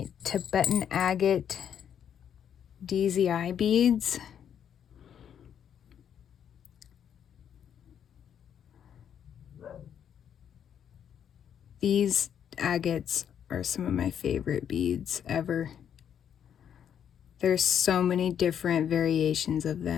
Tibetan agate DZI beads. These agates are some of my favorite beads ever. There's so many different variations of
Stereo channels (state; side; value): quieter; right; 8.8 dB